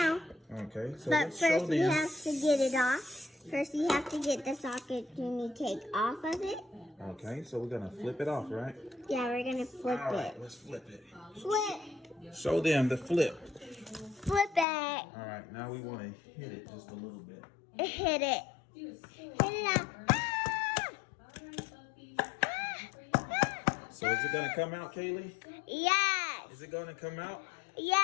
Okay, so But let's show first we them. have to get it off. First you have to get the Sakatumi cake off of it. Okay, so we're gonna flip it off, right? Yeah, we're gonna flip All right, it. let's flip it. Flip! Show them the flip. Flip it! All right, now we want to hit it just a little bit. Hit it. Hit it up. Ah! So is it gonna come out, Kaylee? Yes! Is it gonna come out?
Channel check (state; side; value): drops out; right; at 14.7 s